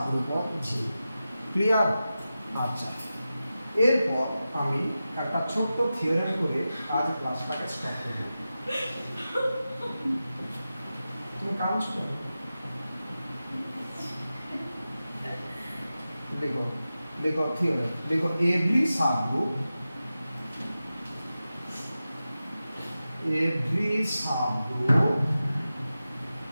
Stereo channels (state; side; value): inverted; both; correlation -0.93